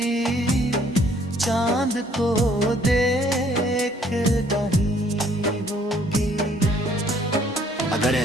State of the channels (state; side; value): normal; both; correlation 0.62